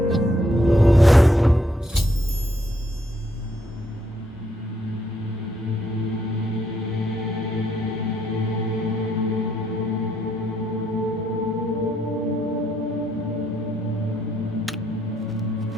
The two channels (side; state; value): both; normal; correlation 0.74